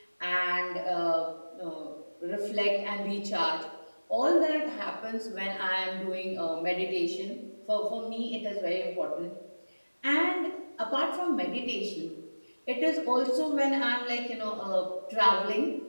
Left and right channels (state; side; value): inverted; both; correlation -1.00